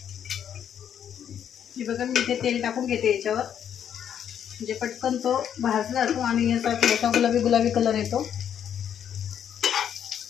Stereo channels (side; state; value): right; quieter; 9.1 dB